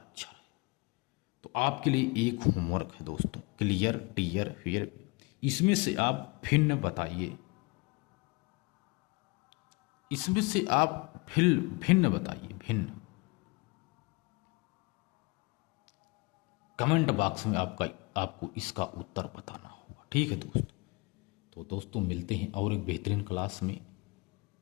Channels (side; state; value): right; quieter; 27.3 dB